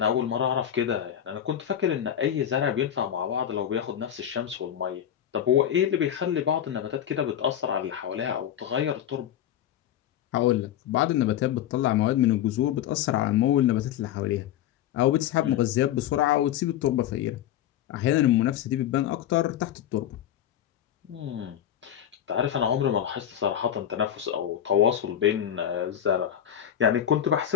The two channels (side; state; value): right; quieter; 10.6 dB